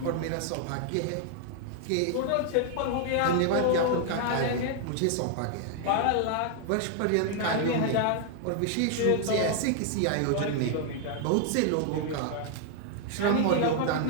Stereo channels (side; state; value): both; different; correlation 0.00